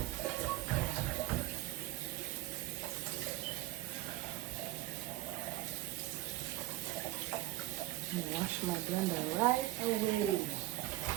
Wash my blender right away,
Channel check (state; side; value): quieter; left; 16.9 dB